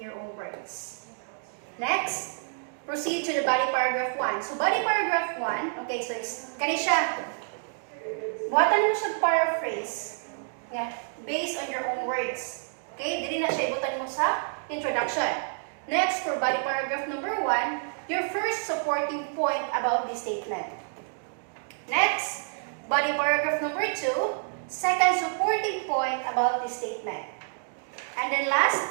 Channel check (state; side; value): silent; left; digital silence